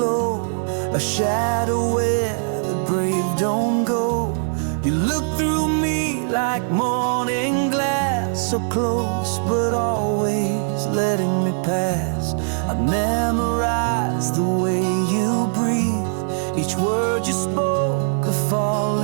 a shadow where the brave don't go. You looked through me like morning glass, so close but always letting me pass. I memorized the way you breathe, each word you spoke a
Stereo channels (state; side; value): silent; left; digital silence